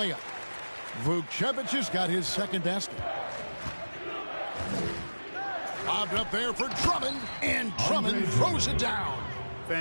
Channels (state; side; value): inverted; both; correlation -1.00